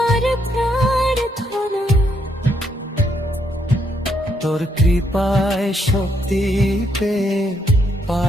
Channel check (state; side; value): normal; both; correlation 0.75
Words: প্রার্থনা। তোর কৃপায় শক্তি পেয়ে